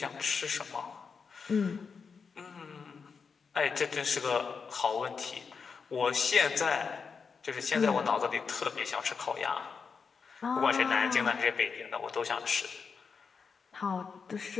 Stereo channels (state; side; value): quieter; right; 5.6 dB